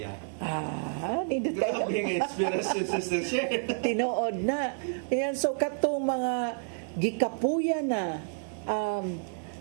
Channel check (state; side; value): silent; left; 58 dB below the other